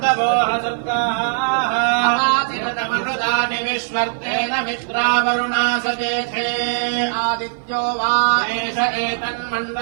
విశ్వర్తేన మిత్రావరుణా సజేతే ఆదిత్యో వా ఏష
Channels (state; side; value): silent; left; 56 dB below the other